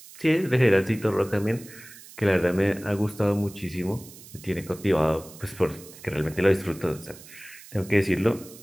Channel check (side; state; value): right; noise; hiss, 19 dB below the sound